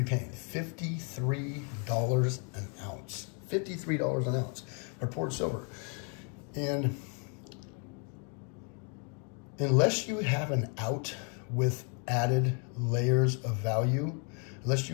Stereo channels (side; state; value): right; quieter; 38.6 dB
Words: be paying $53 an ounce. $53 an ounce for poured silver. And unless you have an out with added layers of value, unless